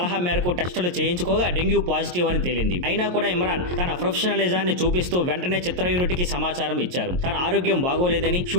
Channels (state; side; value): late; left; 22 ms